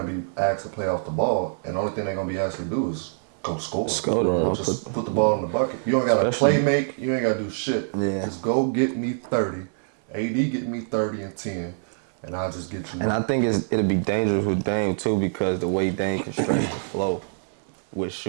be asked to play off the ball, and the only thing they're gonna be asked to do is go score. Just put the ball in the bucket. You don't gotta play make. You ain't gotta do shit. Yeah. Just go get me 30. AD get me 30 and 10, and I'll just get you. And I think it'll be dangerous with Dame too because the way Dame can stretch the flow with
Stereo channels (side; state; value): left; silent; 62 dB below the other